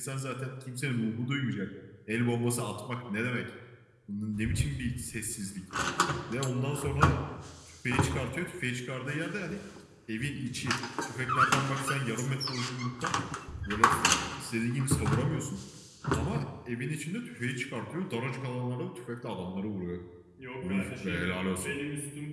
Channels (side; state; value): both; identical; correlation 1.00